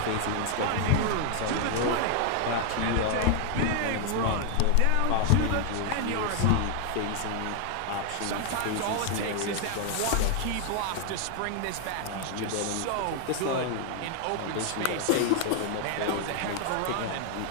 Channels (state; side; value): different; both; correlation 0.00